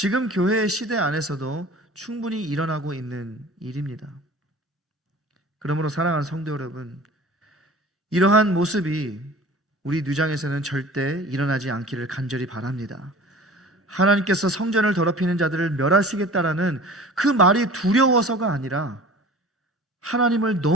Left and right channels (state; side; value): normal; both; correlation 0.42